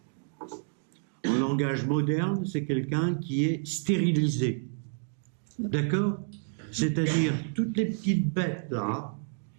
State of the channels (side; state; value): left; silent; digital silence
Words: en langage moderne, c'est quelqu'un qui est stérilisé. D'accord? C'est-à-dire, toutes les petites bêtes là,